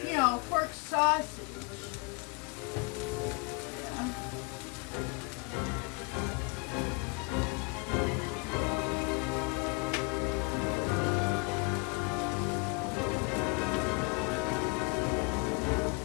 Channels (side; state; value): right; quieter; 29.7 dB